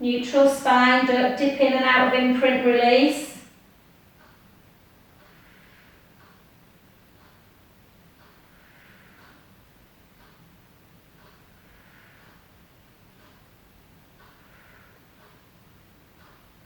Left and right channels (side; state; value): both; identical; correlation 1.00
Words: spine, don't dip in and out of imprint release.